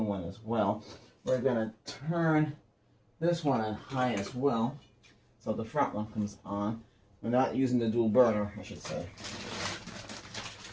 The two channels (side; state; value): both; identical; correlation 1.00